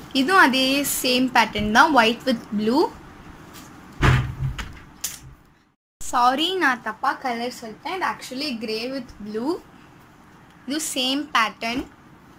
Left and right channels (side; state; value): both; identical; correlation 1.00